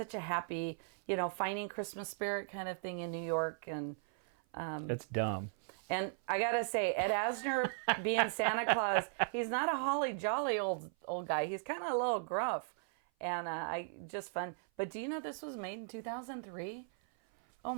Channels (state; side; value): silent; left; 53 dB below the other